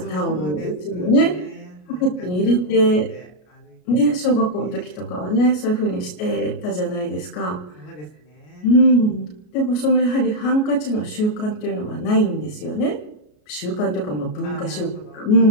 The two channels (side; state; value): right; late; 33 ms